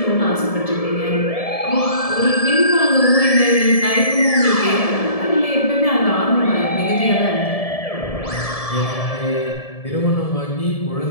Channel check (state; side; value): late; right; 1.7 ms